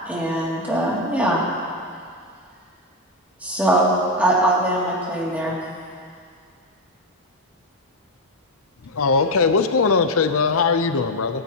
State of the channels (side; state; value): both; normal; correlation 0.07